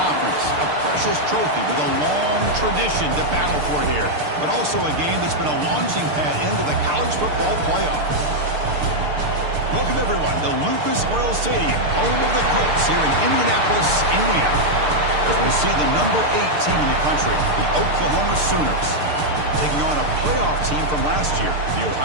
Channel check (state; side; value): late; left; 6.7 ms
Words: A precious trophy with a long tradition to battle for here. But also a game that's been a launching pad into the college football playoff. Welcome, everyone, to Lucas Oil Stadium, home of the Colts here in Indianapolis, Indiana. As we see the number 8 team in the country, the Oklahoma Sooners, taking on a playoff team from last year, the